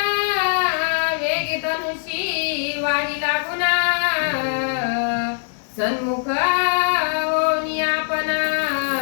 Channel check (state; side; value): silent; right; 65 dB below the other